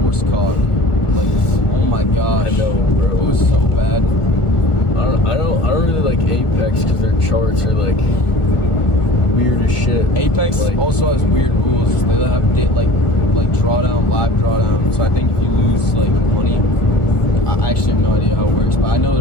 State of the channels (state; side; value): late; right; 1.4 ms